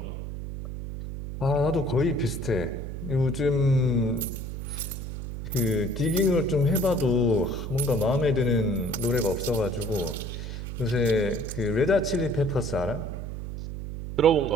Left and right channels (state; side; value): noise; right; hum, 7 dB below the sound